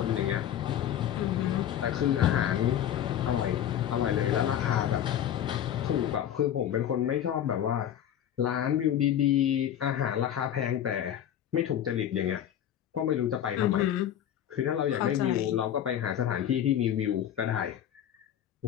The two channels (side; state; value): right; quieter; 10.4 dB